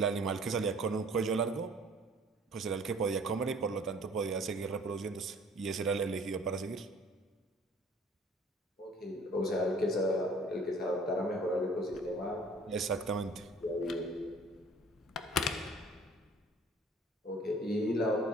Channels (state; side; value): normal; both; correlation 0.52